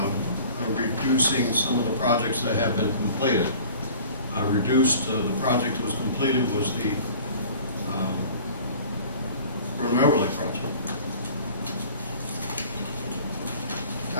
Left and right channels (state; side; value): inverted; both; correlation -0.46